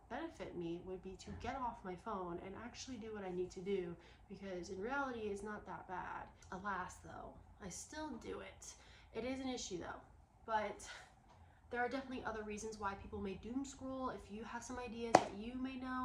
benefit me would be to get off my phone and actually do what I need to do, because in reality it's not that bad. Alas though, I still do it. It is an issue though, but there are definitely other reasons why people may doom scroll. If you have some ideas that you may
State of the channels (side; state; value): both; identical; correlation 1.00